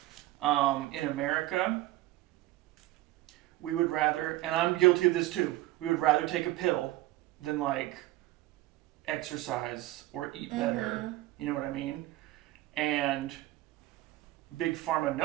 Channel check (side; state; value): left; quieter; 16.6 dB